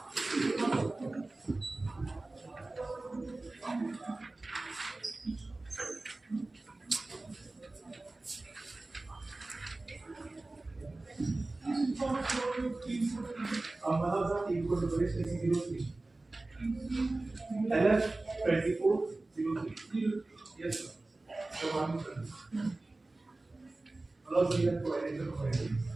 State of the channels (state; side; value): quieter; left; 3.0 dB